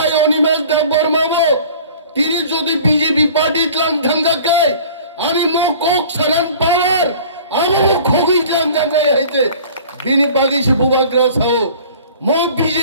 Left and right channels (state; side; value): inverted; both; correlation -0.46